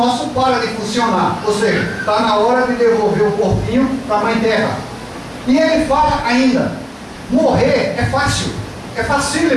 para de funcionar, ou seja, está na hora de devolver o corpinho para a Mãe Terra. E ele fala ainda: morrer é fácil, é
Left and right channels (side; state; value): both; identical; correlation 1.00